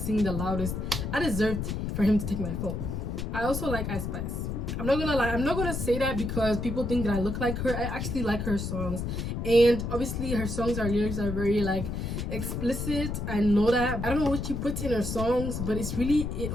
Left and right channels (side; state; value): left; noise; rumble, 3 dB below the sound